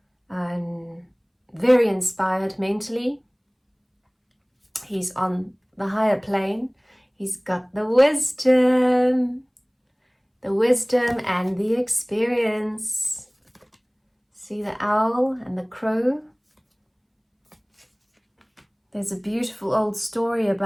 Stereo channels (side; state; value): both; identical; correlation 1.00